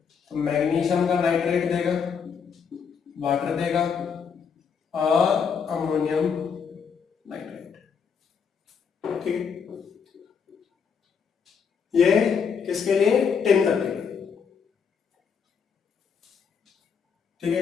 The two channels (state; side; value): quieter; right; 6.5 dB